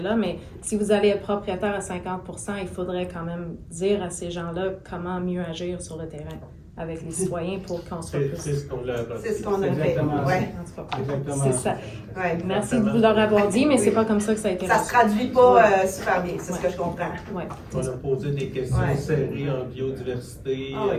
mais si vous allez être propriétaire à 50%, il faudrait quand même dire à ces gens-là comment mieux agir sur le terrain avec les citoyens pour qu'on soit plus... C'est ce qu'on a C'est ce qu'on a fait. Ouais. Exactement. C'est ça. Ouais, Merci de vous leur avoir dit, mais c'est pas comme ça que ça a été Ça se traduit pas super bien, c'est ce que je comprends. Ouais. On a posé des questions serrées en biodiversité,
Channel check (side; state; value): both; identical; correlation 1.00